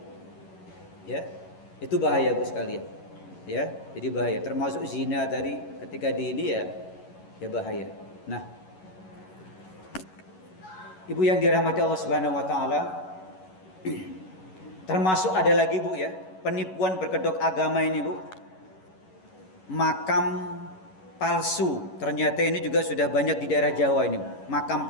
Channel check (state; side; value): late; right; 11 ms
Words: Ya. Itu bahaya, Bu sekalian. Ya, jadi bahaya. Termasuk zina tadi ketika di ini ya bahaya. Nah, Ibu yang dirahmati Allah Subhanahu wa taala, termasuk ada lagi, Bu, ya, penipuan berkedok agama ini, Bu. Makam palsu. Ternyata ini juga sudah banyak di daerah Jawa ini, makam